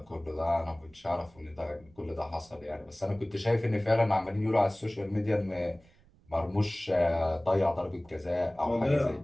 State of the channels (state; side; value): noise; right; rumble, 29 dB below the sound